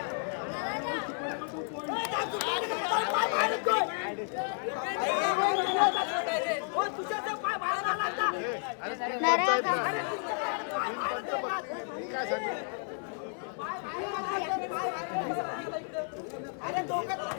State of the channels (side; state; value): right; silent; 57 dB below the other